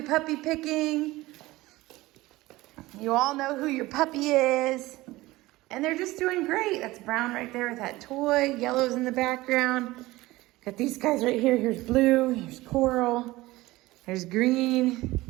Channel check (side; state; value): left; quieter; 18.9 dB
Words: puppy picking. You all know who your puppy is. And they're just doing great. That's Brown right there with that toy. Yellow's in the background. Got these guys right here. Here's Blue, here's Coral, there's Green.